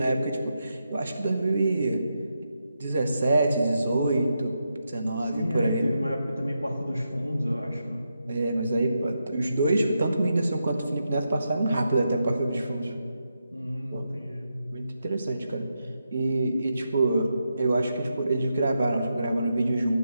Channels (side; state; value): both; inverted; correlation -0.85